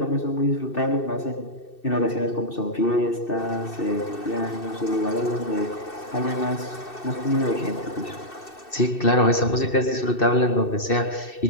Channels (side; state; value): right; late; 2.7 ms